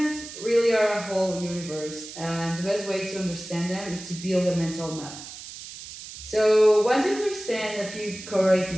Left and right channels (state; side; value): noise; right; hiss, 13 dB below the sound